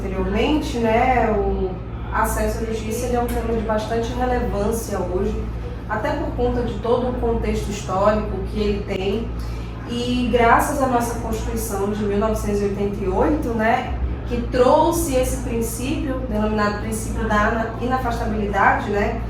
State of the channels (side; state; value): both; identical; correlation 1.00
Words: né, o acesso à justiça é um tema de bastante relevância hoje, até por conta de todo o contexto histórico que ele tem, e graças à nossa Constituição de 1988, né, que trouxe esse princípio, denominado princípio da inafastabilidade, né,